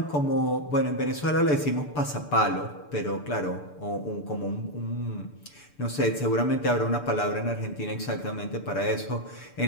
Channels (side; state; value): right; late; 6.8 ms